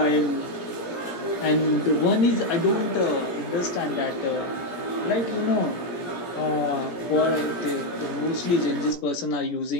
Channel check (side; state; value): right; late; 17 ms